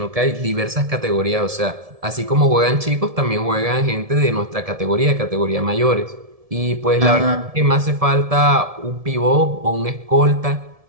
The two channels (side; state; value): left; late; 1.7 ms